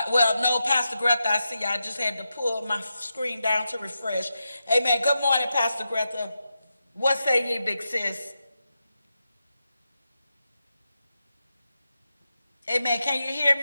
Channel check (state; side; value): inverted; both; correlation -0.88